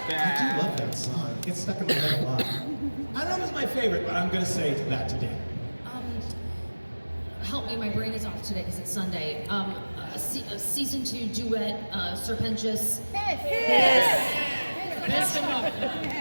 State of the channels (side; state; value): both; inverted; correlation -1.00